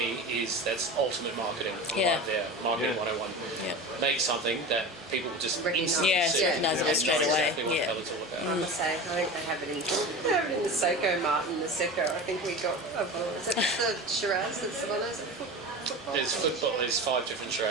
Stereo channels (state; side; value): normal; both; correlation 0.31